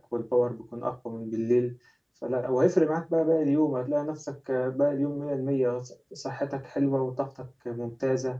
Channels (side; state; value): both; identical; correlation 1.00